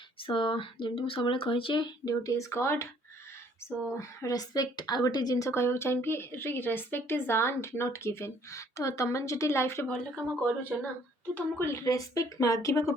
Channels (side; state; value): both; normal; correlation 0.61